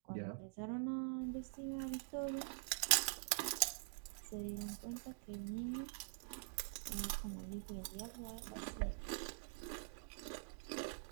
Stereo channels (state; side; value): silent; left; digital silence